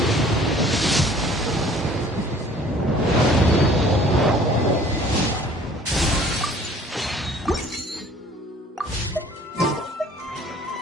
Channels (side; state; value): both; normal; correlation 0.53